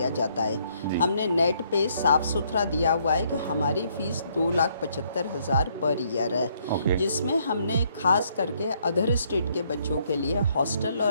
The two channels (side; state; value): both; inverted; correlation -0.69